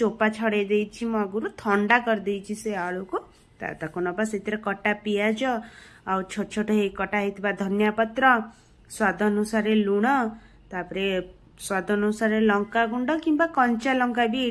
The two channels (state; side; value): identical; both; correlation 1.00